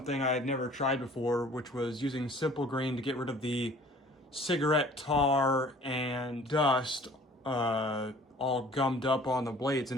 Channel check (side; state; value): both; normal; correlation 0.51